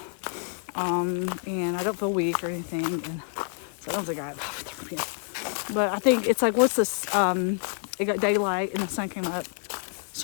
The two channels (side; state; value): right; silent; 60 dB below the other